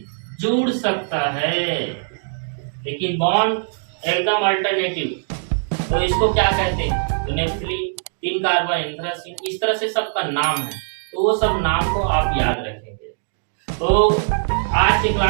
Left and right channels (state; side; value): silent; left; digital silence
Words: जुड़ सकता है, लेकिन बॉन्ड एकदम अल्टरनेटिव, तो इसको क्या कहते हैं? तो नेफ्थली, 3 कार्बन एंथ्रासीन, इस तरह से सबका नाम है, तो वो सब नाम को आप याद रखेंगे। तो आज के